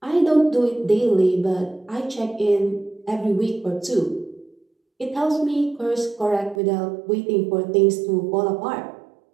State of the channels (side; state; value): left; drops out; at 6.6 s